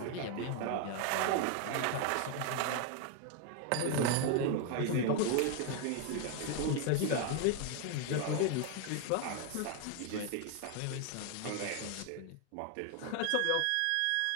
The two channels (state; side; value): different; both; correlation 0.01